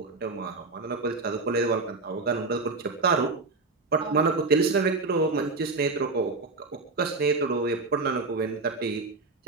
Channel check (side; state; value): left; quieter; 3.7 dB